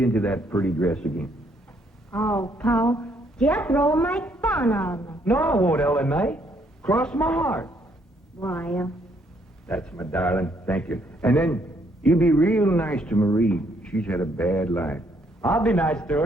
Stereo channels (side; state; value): both; normal; correlation 0.70